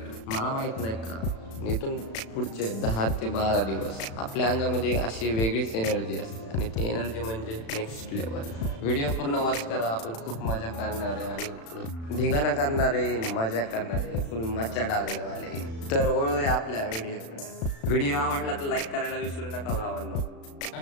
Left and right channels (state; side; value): late; right; 36 ms